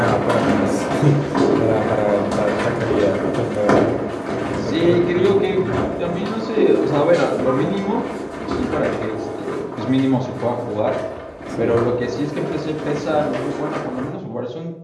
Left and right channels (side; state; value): both; identical; correlation 1.00